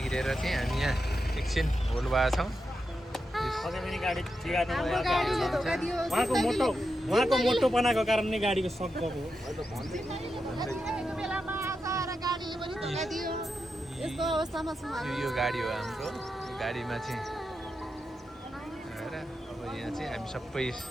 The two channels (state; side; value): normal; both; correlation 0.87